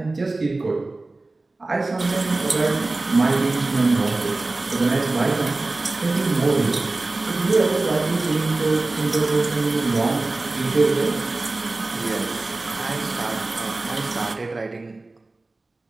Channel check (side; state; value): left; quieter; 3.2 dB